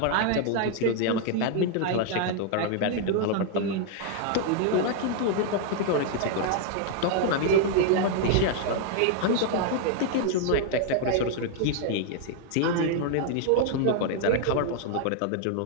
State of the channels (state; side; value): different; both; correlation 0.00